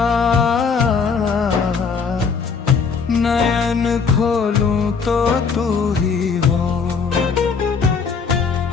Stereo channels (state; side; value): quieter; right; 5.5 dB